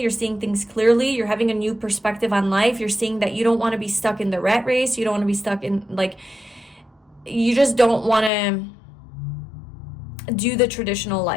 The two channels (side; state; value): right; drops out; at 8.3 s